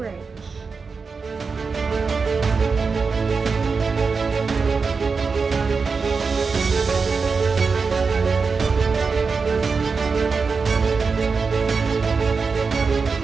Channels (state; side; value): quieter; left; 4.9 dB